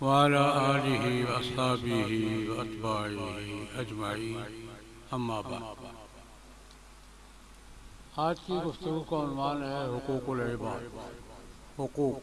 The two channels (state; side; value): identical; both; correlation 1.00